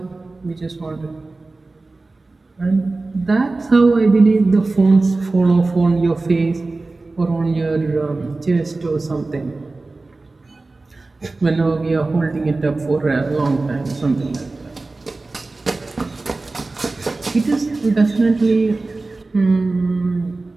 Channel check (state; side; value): quieter; left; 3.4 dB